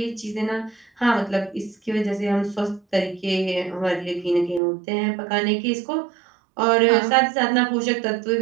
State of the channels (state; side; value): drops out; left; at 4.6 s